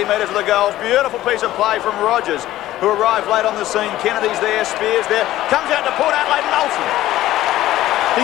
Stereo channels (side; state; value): right; quieter; 14.8 dB